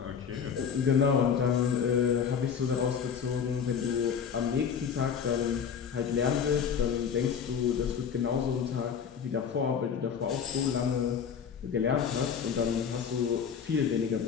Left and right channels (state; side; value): quieter; right; 7.2 dB